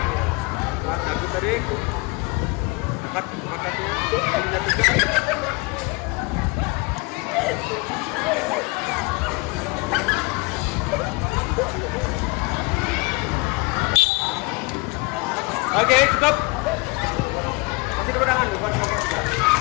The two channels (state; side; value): quieter; right; 28.0 dB